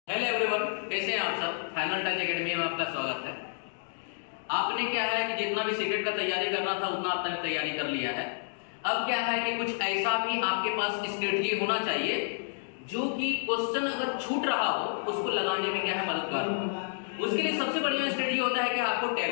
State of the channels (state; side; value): silent; right; digital silence